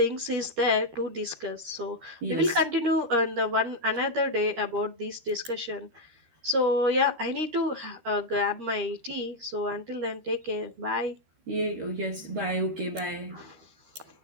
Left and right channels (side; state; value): left; late; 13 ms